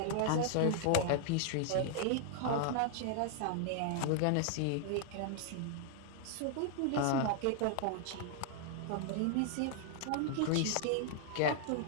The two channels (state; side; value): different; both; correlation -0.01